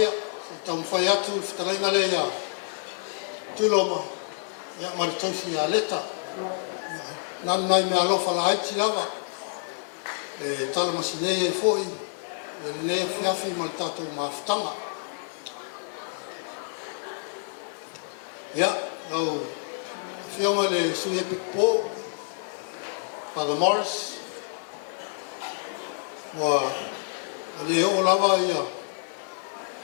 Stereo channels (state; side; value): silent; right; digital silence